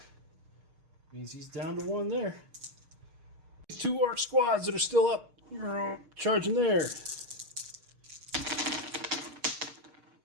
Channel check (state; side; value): late; left; 6.5 ms